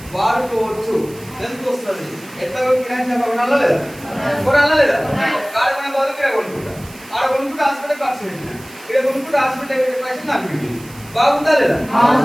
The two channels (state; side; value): noise; right; hiss, 20 dB below the sound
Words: వాడుకోవచ్చు. ఎందుకు వస్తుంది? ఎట్లా కిరాయి కొనాలా లేదా? కొనాలా లేదా? కాడమైన బాధ ఇక్కడ కొనుక్కుంటా, ఆడ కొనుక్కుంటే హాస్పిటల్ ఖర్చు పెట్టిన, ఇక్కడ కొనుక్కుంటే హాస్పిటల్ పైసలు నాకు పెట్టింది. బాగుందా లేదా?